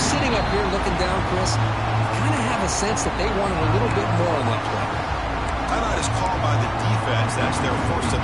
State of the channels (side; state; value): both; identical; correlation 1.00